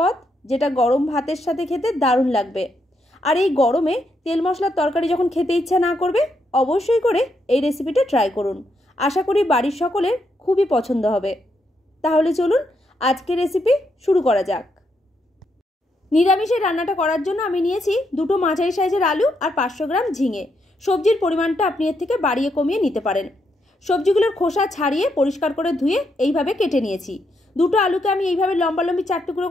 যেটা গরম ভাতের সাথে খেতে দারুণ লাগবে। আর এই গরমে তেল মশলার তরকারি যখন খেতে ইচ্ছা না করবে, অবশ্যই করে এই রেসিপিটা ট্রাই করুন। আশা করি বাড়ির সকলের খুবই পছন্দ হবে। তাহলে চলুন আজকের রেসিপি শুরু করা যাক। নিরামিষের রান্নাটা করার জন্য আমি নিয়েছি দুটো মাঝারি সাইজের আলু আর 500 গ্রাম ঝিঙে। সবজির পরিমাণটা আপনি এর থেকে বাড়িয়ে কমিয়ে নিতে পারেন। সবজিগুলোর খোসা ছাড়িয়ে পরিষ্কার করে ধুয়ে এইভাবে কেটে নিয়েছি। দুটো আলুকে আমি এইভাবে লম্বালম্বি 4 টুকরো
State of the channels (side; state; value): both; normal; correlation 0.79